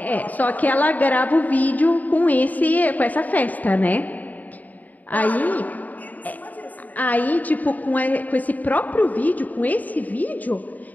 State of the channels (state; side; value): late; right; 0.079 ms